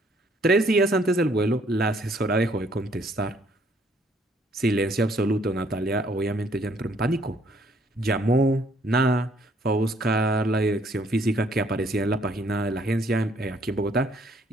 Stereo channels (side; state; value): both; normal; correlation 0.64